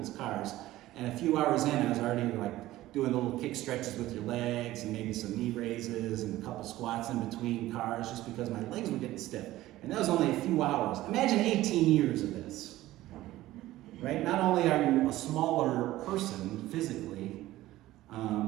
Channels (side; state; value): left; quieter; 15.9 dB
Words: cars, and a few hours in I was already like doing little kick stretches with your legs and maybe some knee raises and a couple squats in between cars just because my legs were getting stiff. And that was only a few hours. Imagine 18 years of this, right? Not only are you a smaller person physically,